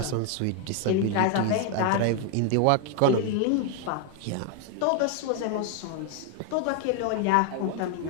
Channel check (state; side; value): different; both; correlation 0.01